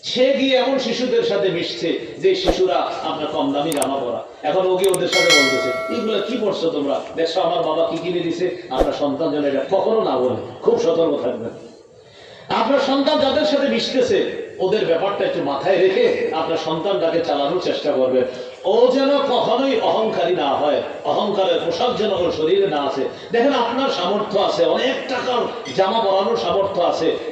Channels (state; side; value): identical; both; correlation 1.00